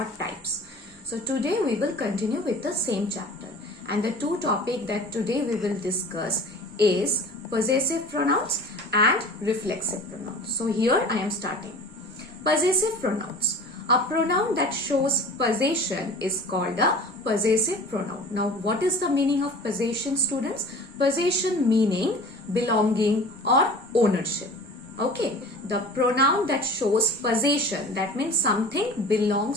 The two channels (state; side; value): normal; both; correlation 0.41